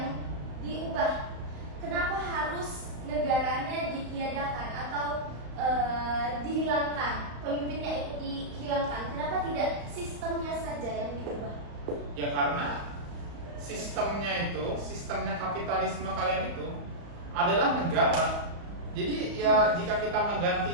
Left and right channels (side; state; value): left; late; 35 ms